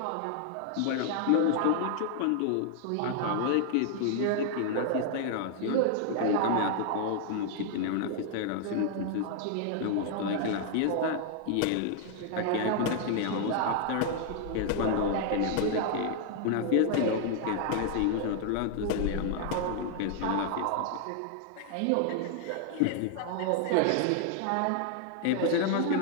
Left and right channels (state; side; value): different; both; correlation 0.00